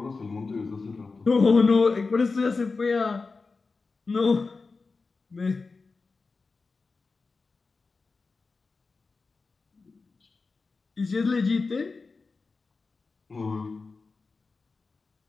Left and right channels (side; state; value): right; quieter; 4.2 dB